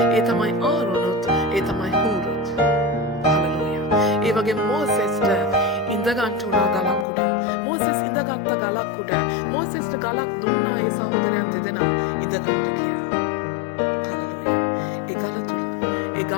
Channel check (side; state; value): right; drops out; at 7.1 s